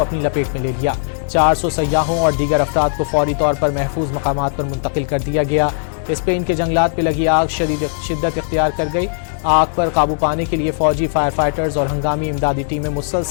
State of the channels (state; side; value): silent; right; digital silence